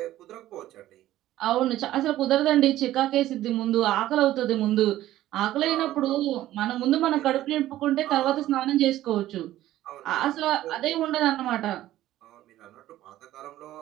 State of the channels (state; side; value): quieter; left; 14.3 dB